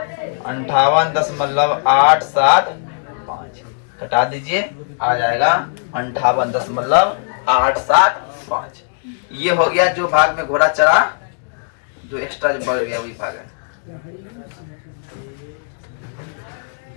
58.875। घटा दीजिए, आ जाएगा 58.875। ये हो गया जो भाग में घोड़ा चढ़ा, जो एक्स्ट्रा जो बढ़ गया वही भाग है।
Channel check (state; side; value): silent; right; digital silence